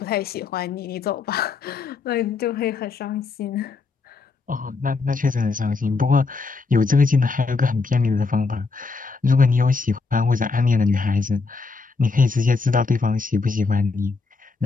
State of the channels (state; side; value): quieter; right; 4.2 dB